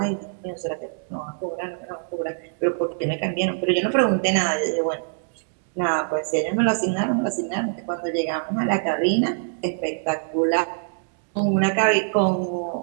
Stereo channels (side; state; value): left; silent; digital silence